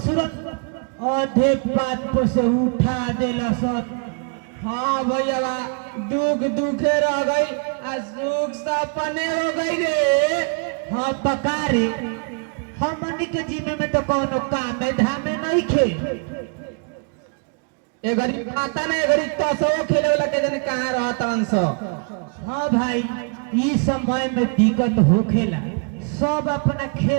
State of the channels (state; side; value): quieter; left; 36.7 dB